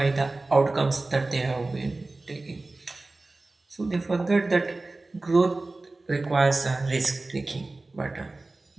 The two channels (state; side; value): quieter; left; 3.2 dB